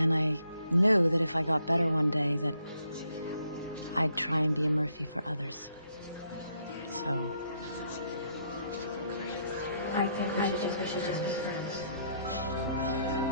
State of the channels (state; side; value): inverted; both; correlation -0.72